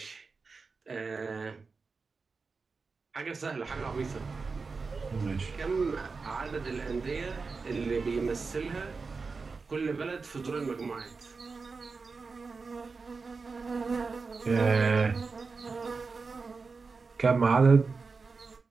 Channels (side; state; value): left; quieter; 4.5 dB